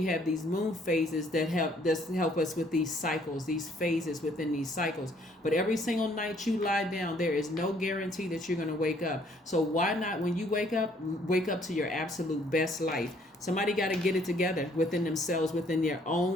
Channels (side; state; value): both; normal; correlation 0.63